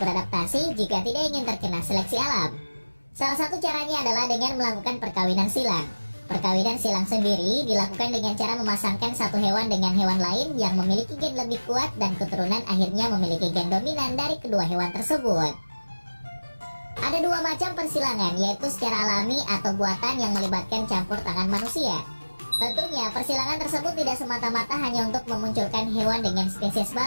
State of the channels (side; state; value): both; inverted; correlation -1.00